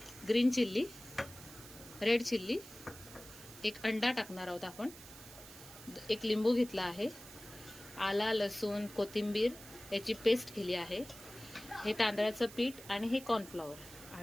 ग्रीन चिल्ली, रेड चिल्ली, एक अंडा टाकणार आहोत आपण, एक लिंबू घेतला आहे, आला, लसूण, कोथिंबीर याची पेस्ट केली आहे, हे तांदळाचं पीठ आणि हे कॉर्नफ्लॉवर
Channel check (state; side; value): noise; right; hiss, 16 dB below the sound